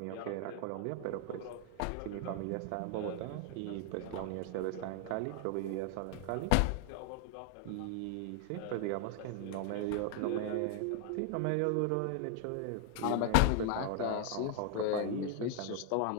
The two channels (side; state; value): both; different; correlation 0.00